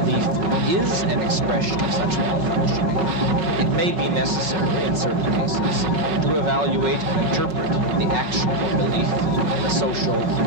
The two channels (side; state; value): left; late; 5.4 ms